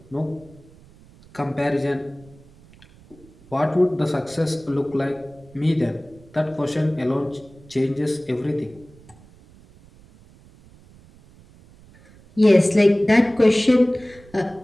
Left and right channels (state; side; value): noise; right; rumble, 25 dB below the sound